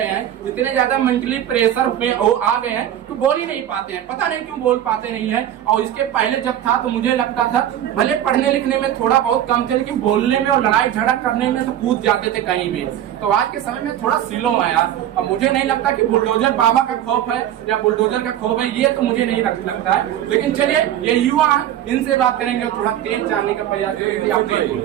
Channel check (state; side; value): quieter; left; 11.4 dB